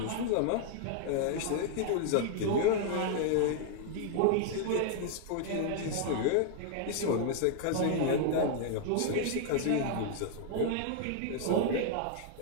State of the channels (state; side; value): different; both; correlation 0.00